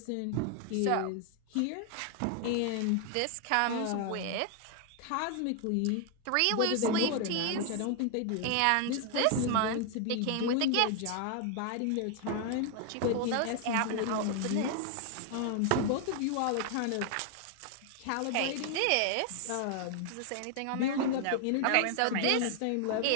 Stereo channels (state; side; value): different; both; correlation 0.00